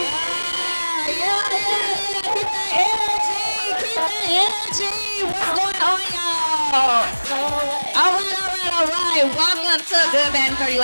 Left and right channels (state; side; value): inverted; both; correlation -1.00